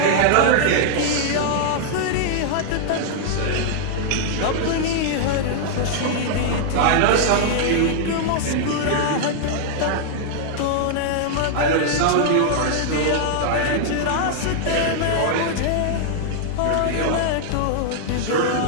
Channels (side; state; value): both; different; correlation -0.01